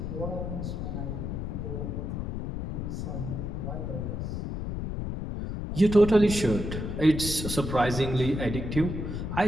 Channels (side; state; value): left; noise; rumble, 4 dB below the sound